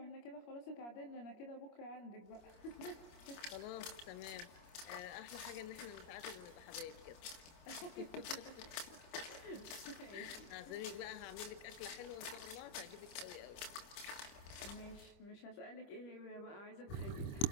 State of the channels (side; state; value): right; late; 25 ms